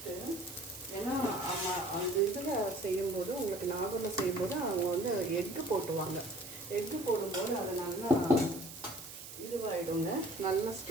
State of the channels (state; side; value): noise; right; hiss, 13 dB below the sound